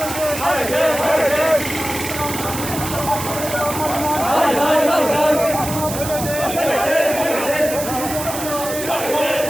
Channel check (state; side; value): noise; right; hiss, 8 dB below the sound